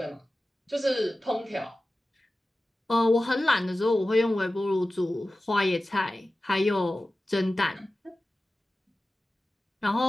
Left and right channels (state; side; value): normal; both; correlation 0.96